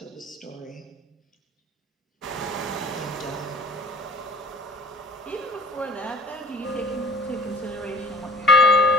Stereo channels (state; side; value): normal; both; correlation 0.51